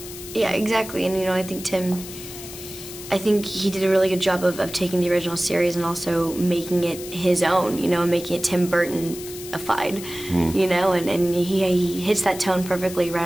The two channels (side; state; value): left; noise; hiss, 13 dB below the sound